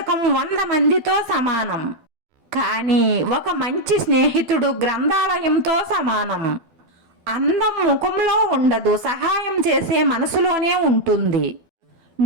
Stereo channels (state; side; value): late; left; 12 ms